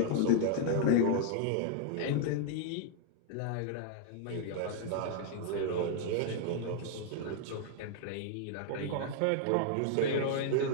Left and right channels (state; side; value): different; both; correlation -0.01